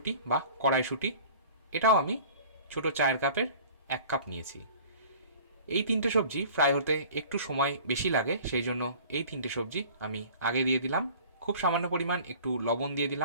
বা কড়াইশুঁটি। এটাও আমি ছোটো চায়ের কাপের 1 কাপ নিয়েছি। এই 3টে সবজি ফ্রাই হতে একটু সময় বেশি লাগে, সেই জন্য এই 3টে সবজি আমি আগে দিয়ে দিলাম। খুব সামান্য পরিমাণ একটু লবণ দিয়ে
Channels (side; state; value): both; inverted; correlation -0.45